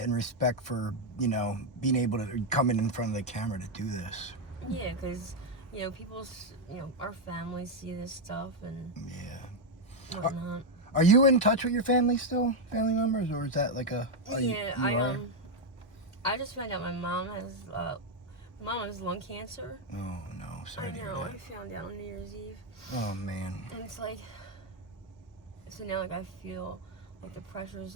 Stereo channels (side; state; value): both; normal; correlation 0.02